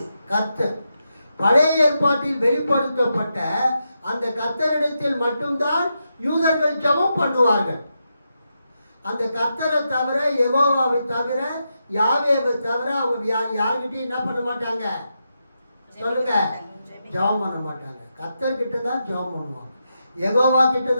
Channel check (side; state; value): both; inverted; correlation -0.86